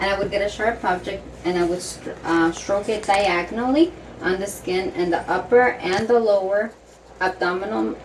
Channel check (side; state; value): both; identical; correlation 1.00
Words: and I would get a sharp object, and I would stroke it diagonally on the skin in the upper and the lower abdominal